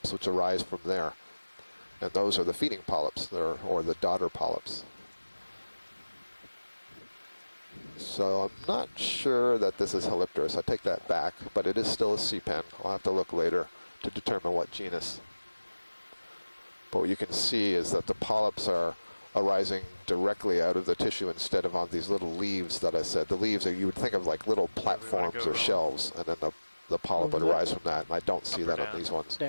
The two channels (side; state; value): both; inverted; correlation -1.00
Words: which arise from there. And those are the feeding polyps, or the daughter polyps. So I'm not sure that this is Helipterus. I take that back, but it is still a sea pen. I'll have to look later to determine what genus. But what you can see is that the polyps are arising directly out of the tissue instead of on these little leaves that I said. The leaves, you would think of like little platforms or shelves, and then the polyp would arise from that, and I don't see that on these ones.